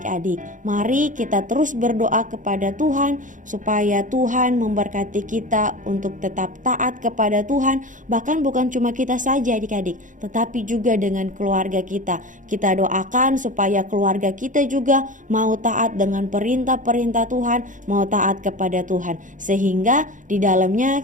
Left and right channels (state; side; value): late; left; 0.37 ms